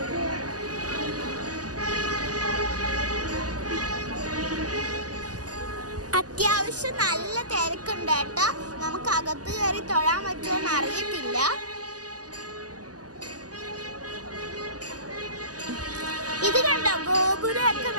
അത്യാവശ്യം നല്ല തിരക്കുണ്ട് കേട്ടോ. നമുക്ക് അകത്ത് കയറി തൊഴാൻ പറ്റുമോന്ന് അറിയത്തില്ല. ഇത് കണ്ടോ, ഗോപുരമൊക്കെ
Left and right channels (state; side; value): late; left; 0.67 ms